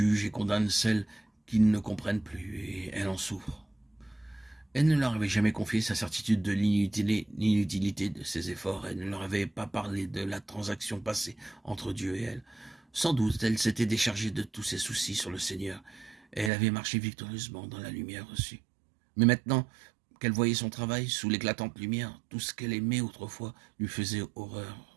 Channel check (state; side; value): drops out; left; at 16.5 s